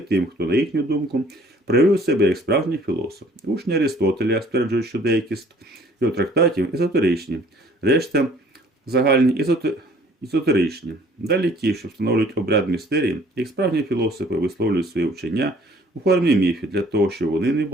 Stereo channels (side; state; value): both; normal; correlation 0.56